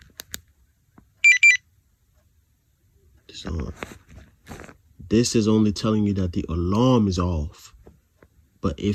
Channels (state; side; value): identical; both; correlation 1.00